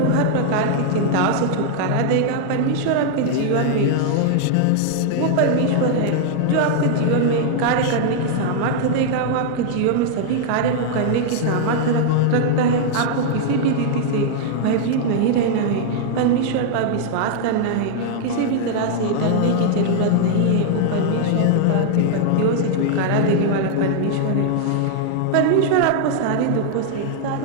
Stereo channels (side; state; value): both; different; correlation -0.01